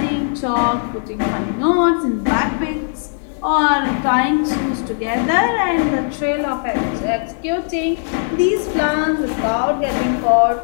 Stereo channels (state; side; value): silent; right; digital silence